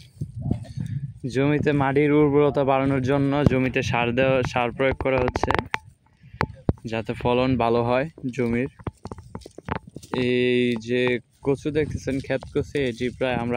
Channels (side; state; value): both; identical; correlation 1.00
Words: জমিতে মাটির উর্বরতা বাড়ানোর জন্য জমিতে সার প্রয়োগ করা হচ্ছে যাতে ফলন ভালো হয় জমির। এই যে কচু দেখতেছেন, ক্ষেত কচু, এটি প্রায় আমরা